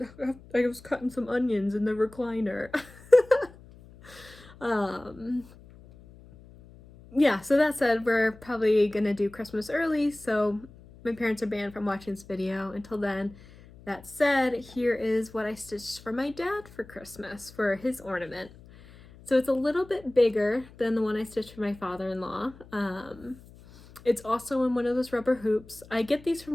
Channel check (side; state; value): left; noise; hum, 22 dB below the sound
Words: I was cutting some onions in the recliner. Yeah, so that said, we're probably gonna do Christmas early, so my parents are banned from watching this video until then. That said, here is what I stitched for my dad for Christmas for his ornament. So it's a little bit bigger than the one I stitched for my father-in-law. It's also in one of those rubber hoops. I get these